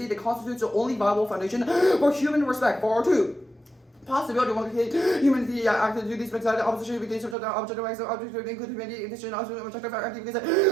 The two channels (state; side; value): drops out; left; at 7.4 s